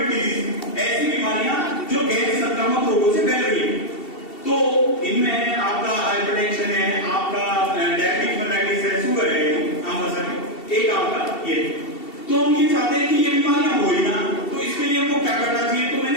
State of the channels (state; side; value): late; right; 2.7 ms